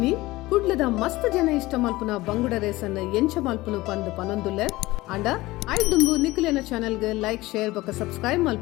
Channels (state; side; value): quieter; right; 19.2 dB